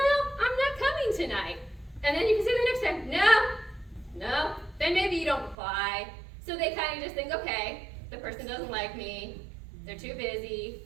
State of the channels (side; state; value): left; drops out; at 5.6 s